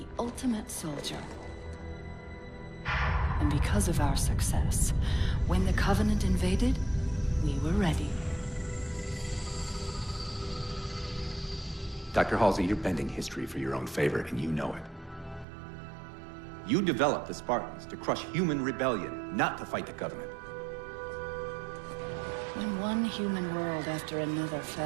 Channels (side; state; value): left; drops out; at 15.5 s